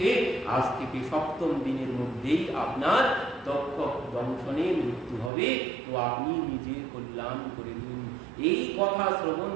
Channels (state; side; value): drops out; left; at 5.3 s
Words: আজ থেকে 7ম দিনের মধ্যেই আপনার দক্ষ দংশনে মৃত্যু হবে, তো আপনি নিজের কল্যাণ করে দিন। এই কথা শ্রবণ